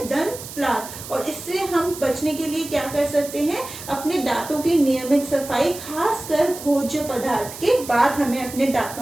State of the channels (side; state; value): right; noise; hiss, 12 dB below the sound